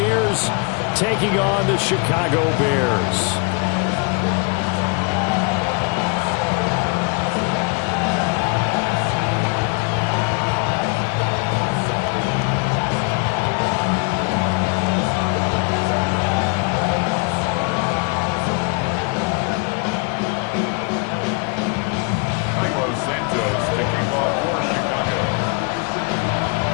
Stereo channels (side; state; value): right; quieter; 32.8 dB